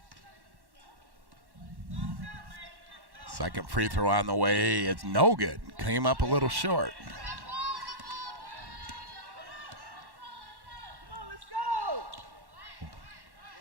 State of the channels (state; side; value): late; left; 1.1 ms